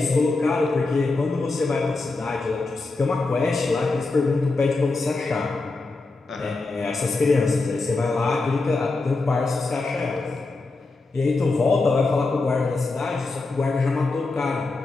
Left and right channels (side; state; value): right; quieter; 3.5 dB